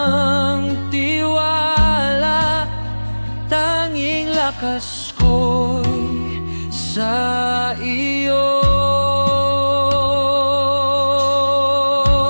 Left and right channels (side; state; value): both; inverted; correlation -1.00